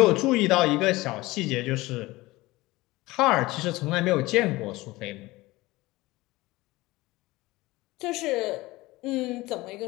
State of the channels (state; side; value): quieter; right; 20.0 dB